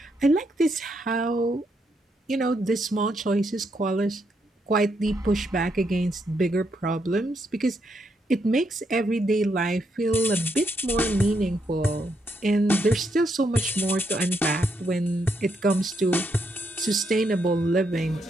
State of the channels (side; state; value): both; normal; correlation 0.78